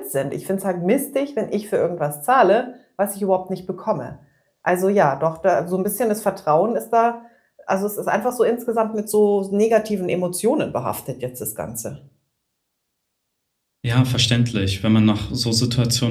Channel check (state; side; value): identical; both; correlation 1.00